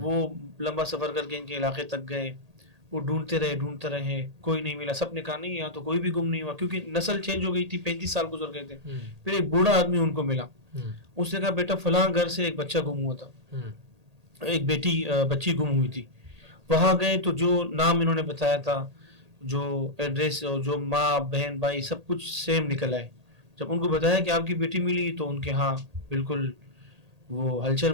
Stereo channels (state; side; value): late; left; 1.8 ms